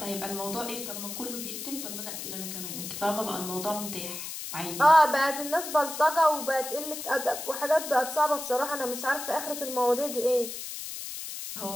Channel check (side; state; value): left; noise; hiss, 7 dB below the sound